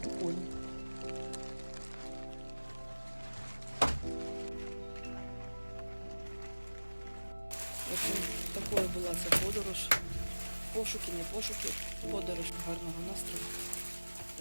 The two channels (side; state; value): both; inverted; correlation -1.00